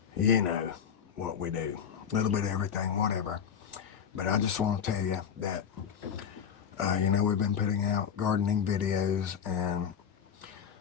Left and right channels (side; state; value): right; quieter; 7.8 dB